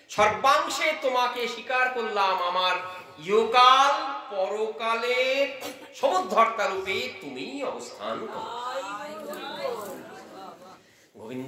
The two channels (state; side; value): identical; both; correlation 1.00